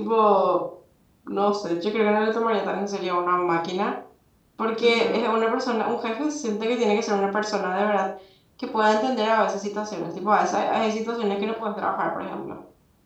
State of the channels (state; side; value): identical; both; correlation 1.00